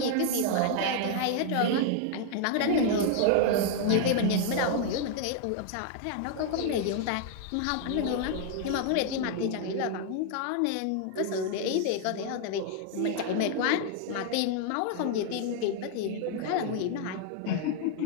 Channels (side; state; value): both; different; correlation 0.00